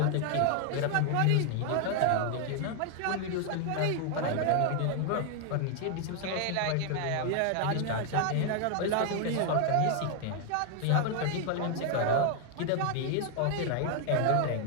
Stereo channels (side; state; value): both; different; correlation 0.00